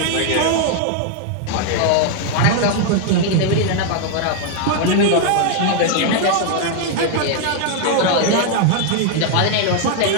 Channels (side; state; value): both; different; correlation 0.00